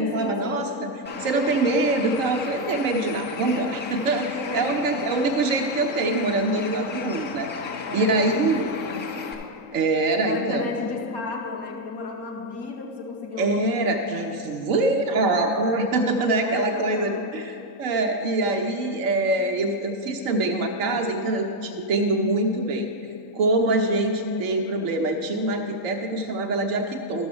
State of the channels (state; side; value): late; left; 3.9 ms